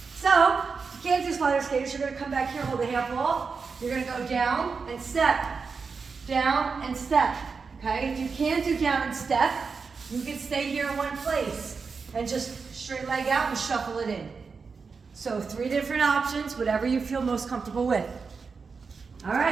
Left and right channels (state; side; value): quieter; left; 5.1 dB